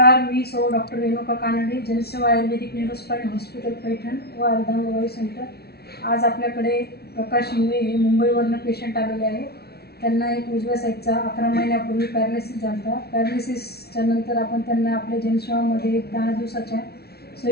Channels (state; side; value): late; right; 0.46 ms